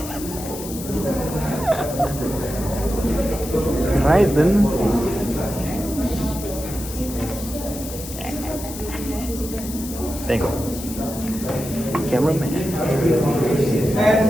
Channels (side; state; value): left; noise; hiss, 11 dB below the sound